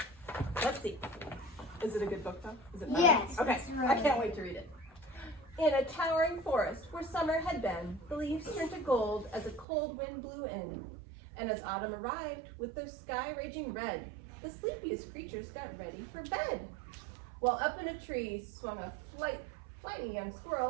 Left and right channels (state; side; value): drops out; left; at 9.7 s